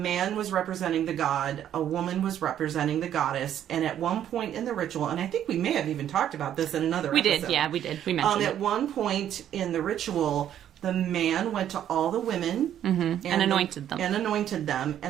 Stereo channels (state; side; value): quieter; left; 10.6 dB